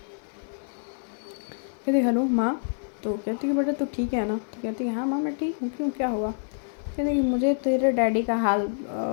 कहती हेलो माँ। तो कहती कि बेटा तू ठीक है ना? तो कहती है हाँ माँ मैं ठीक हूँ, क्यों क्या हुआ? कहती कि मुझे तेरे डैडी का हाल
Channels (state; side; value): silent; right; digital silence